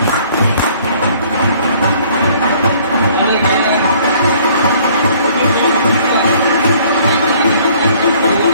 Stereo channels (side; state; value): both; inverted; correlation -0.58